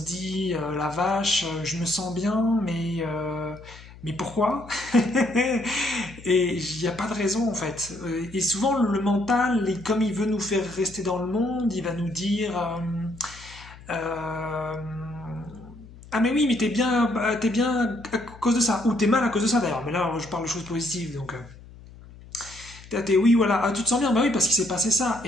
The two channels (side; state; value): left; noise; hum, 19 dB below the sound